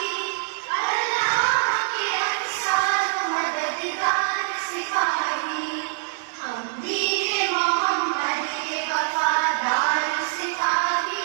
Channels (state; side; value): silent; left; digital silence